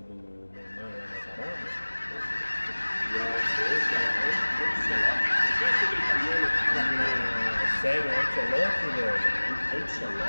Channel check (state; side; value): inverted; both; correlation -1.00